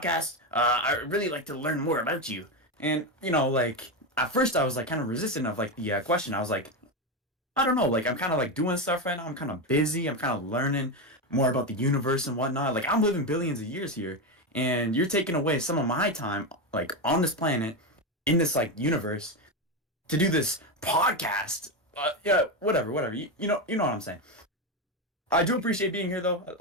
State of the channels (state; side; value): normal; both; correlation 0.12